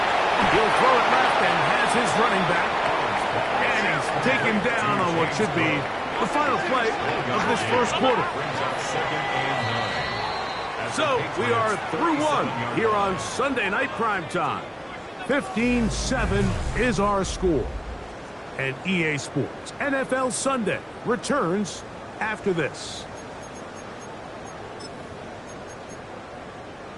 He'll throw it left and has his running back. And he's taken down on what should be the final play of this first quarter. So we are through one here on Sunday Night Primetime. 15-7 is our score. And EA Sports NFL Sunday returns after this.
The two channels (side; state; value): both; identical; correlation 1.00